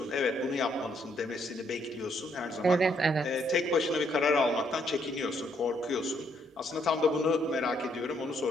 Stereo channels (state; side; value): normal; both; correlation 0.71